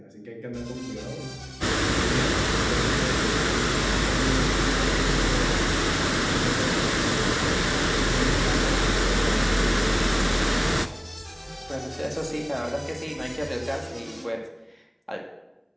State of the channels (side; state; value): both; identical; correlation 1.00